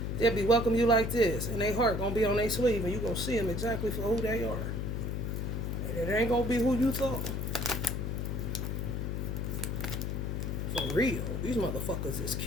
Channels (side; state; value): left; noise; hum, 2 dB below the sound